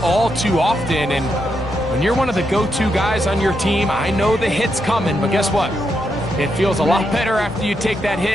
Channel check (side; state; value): both; normal; correlation 0.82